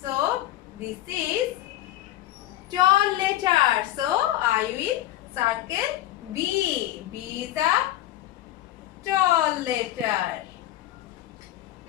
So this is tall letter. So I will circle B. B is a tall letter.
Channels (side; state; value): right; quieter; 14.5 dB